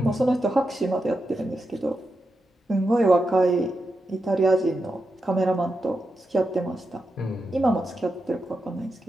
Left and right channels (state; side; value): normal; both; correlation 0.87